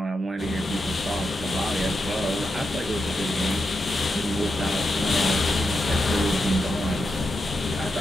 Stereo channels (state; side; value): normal; both; correlation 0.86